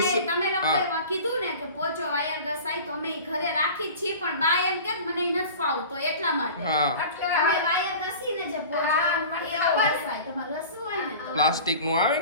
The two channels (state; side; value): inverted; both; correlation -0.38